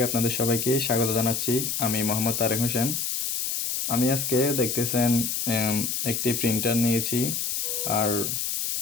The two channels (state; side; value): noise; left; hiss, 1 dB below the sound